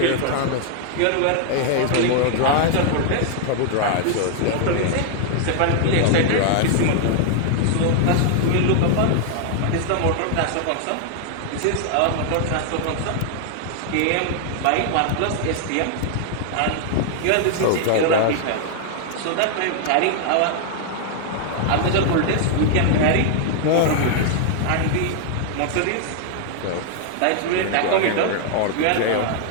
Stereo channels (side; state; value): both; different; correlation 0.00